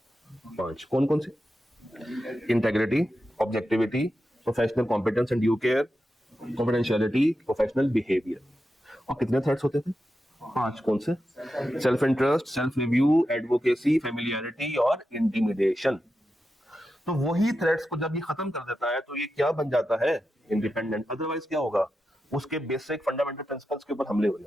5। कौन कौन सी? Integrity, objectivity, professional competence and due care, confidentiality, professional behaviour. और कितने थ्रेड्स होते थे? 5। कौन से? Self interest, self review, advocacy, familiarity और इंटिमिडेशन। तो वही थ्रेड्स को जब ये खत्म कर देता है तो ये क्या बन जाता है? इंडिपेंडेंट। अदरवाइज क्या होगा? उसके बेसिक फंडामेंटल प्रिंसिपल्स के ऊपर हमले हो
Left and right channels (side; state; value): both; normal; correlation 0.89